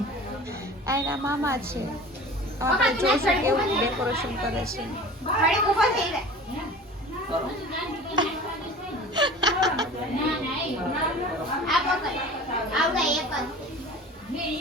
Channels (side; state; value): both; normal; correlation 0.40